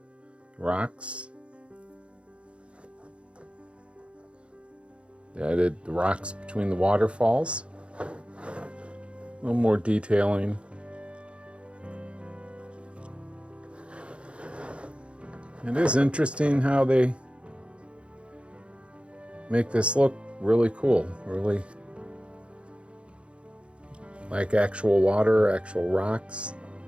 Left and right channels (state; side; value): late; left; 0.059 ms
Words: rocks. They added the rocks between the waterfalls, a little more detailing. It is interesting how they make this look really cool, really like actual water, actual rocks.